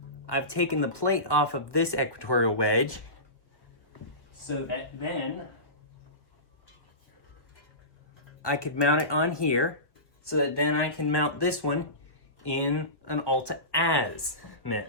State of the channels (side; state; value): right; late; 1.5 ms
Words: I've taken the plate off of this equatorial wedge so that then I could mount it on here, so that then I can mount this one in an